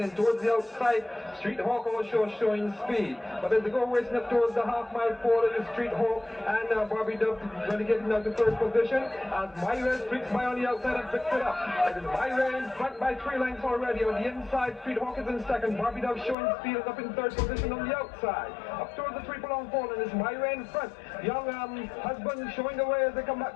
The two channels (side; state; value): right; drops out; at 16.4 s